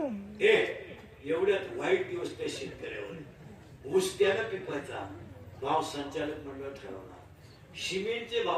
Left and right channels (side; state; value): both; identical; correlation 1.00